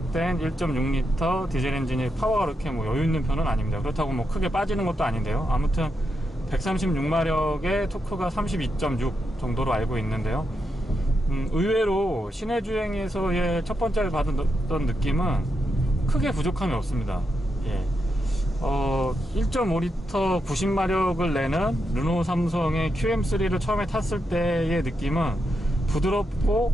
1.6L 디젤 엔진이 파워가 그렇게 뭐 여유 있는 편은 아닙니다. 그렇다고 뭐 크게 빠지는 것도 아닌데요. 아무튼 136마력의 토크가 32.6 정도로 알고 있는데요. 의외로 시내 주행에서의 첫 번째를 받았던 느낌은 크게 부족함이 없습니다. 1.5L 90마력을 내는 르노 삼성의 QM3를 처음에 탔을 때의 느낌은 부드럽고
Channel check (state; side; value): normal; both; correlation 0.84